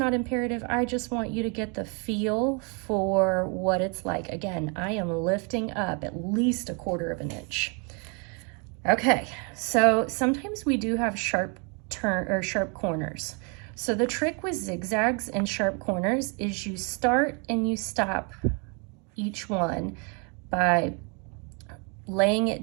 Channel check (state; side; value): quieter; left; 35.1 dB